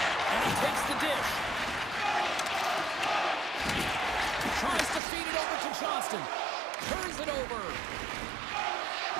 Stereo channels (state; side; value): drops out; left; at 5.0 s